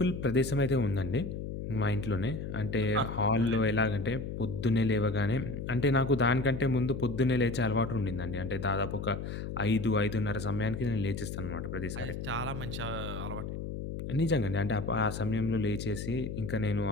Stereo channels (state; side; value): noise; left; hum, 6 dB below the sound